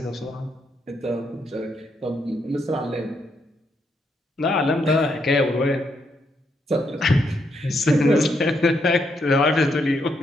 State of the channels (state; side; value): normal; both; correlation 0.77